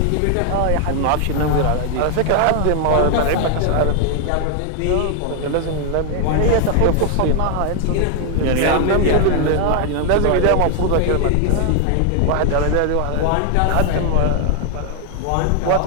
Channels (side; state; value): both; different; correlation 0.00